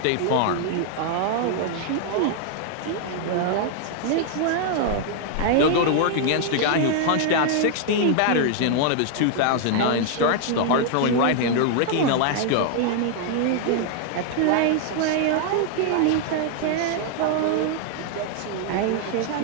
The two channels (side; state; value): both; different; correlation 0.00